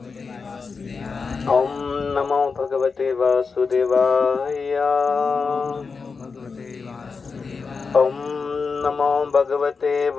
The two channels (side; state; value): right; quieter; 4.9 dB